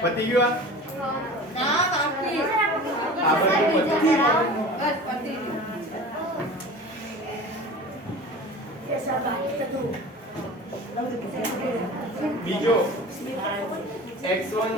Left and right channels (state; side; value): normal; both; correlation 0.38